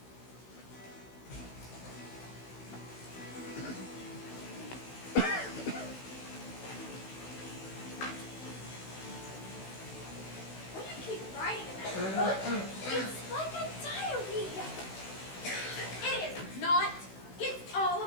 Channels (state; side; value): late; right; 16 ms